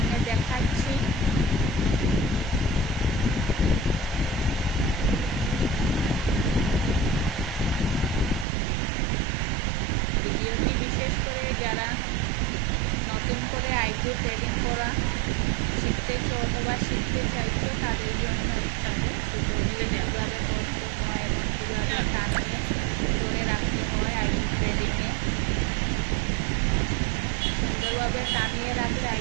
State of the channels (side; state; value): left; drops out; at 8.5 s